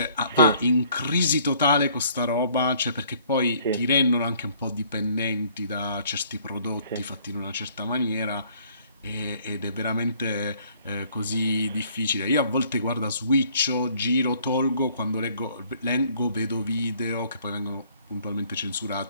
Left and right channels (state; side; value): inverted; both; correlation -0.60